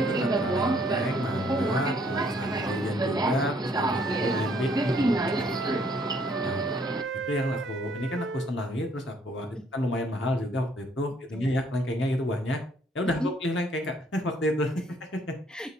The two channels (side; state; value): both; normal; correlation 0.65